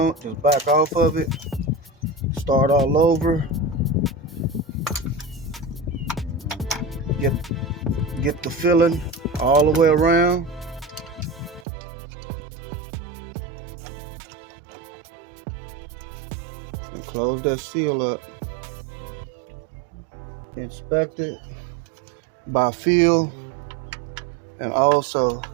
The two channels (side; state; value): left; drops out; at 11.7 s